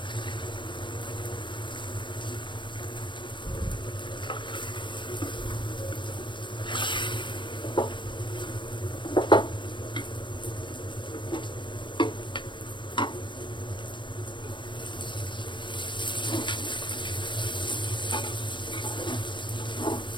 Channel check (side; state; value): right; late; 0.23 ms